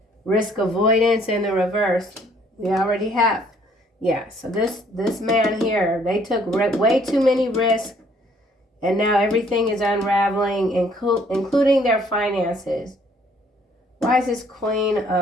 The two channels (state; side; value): normal; both; correlation 0.62